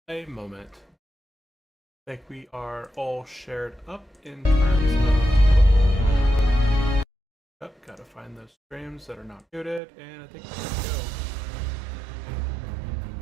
a moment. I think we are all shared up in terms of... gotta find those streams that are not muted, and I think we're good to go.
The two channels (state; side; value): drops out; left; at 9.8 s